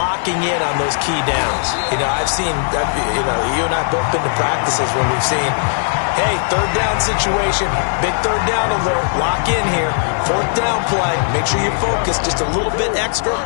in on those key downs. I've seen, you and I both been to practices when we've seen, hey, third down situation, big third down alert, lock in here, fourth down play, make sure you focus just a little bit extra.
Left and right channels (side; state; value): right; silent; 62 dB below the other